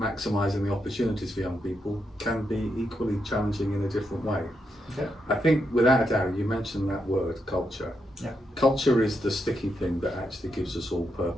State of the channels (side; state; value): both; normal; correlation 0.82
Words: the opportunities for young people can be equally challenging in a different way. I think without a doubt, you mentioned that word, culture. Culture is the sticky thing that actually gives us all